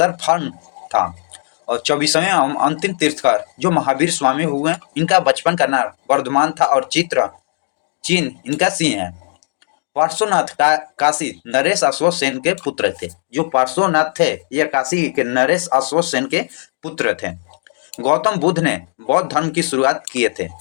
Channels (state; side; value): silent; right; 67 dB below the other